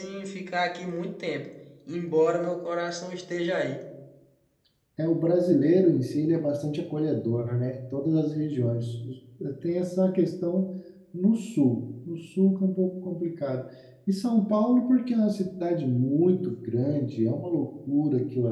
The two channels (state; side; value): identical; both; correlation 1.00